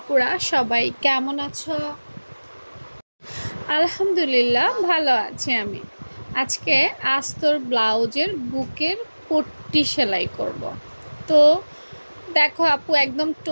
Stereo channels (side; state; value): both; inverted; correlation -1.00